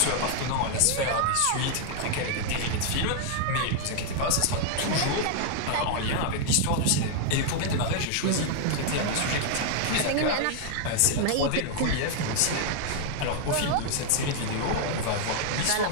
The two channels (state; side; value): different; both; correlation 0.00